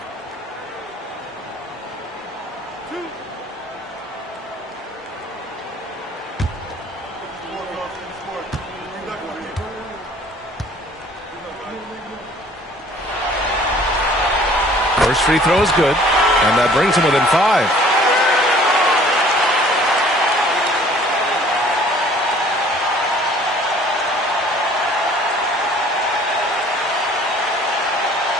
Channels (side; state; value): both; normal; correlation 0.53